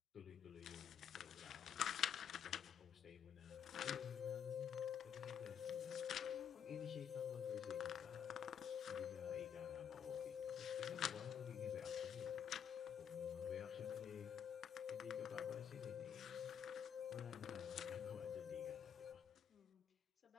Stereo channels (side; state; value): right; quieter; 8.2 dB